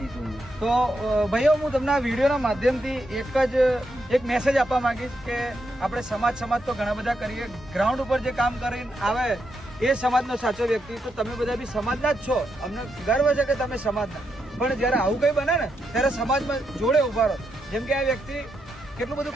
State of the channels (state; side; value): normal; both; correlation 0.82